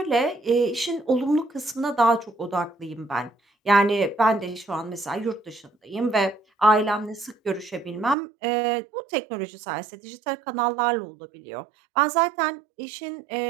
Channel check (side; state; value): left; drops out; at 8.2 s